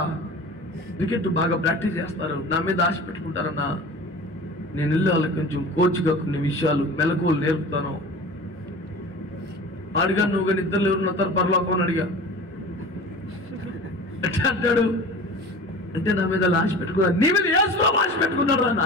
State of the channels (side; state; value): both; normal; correlation 0.38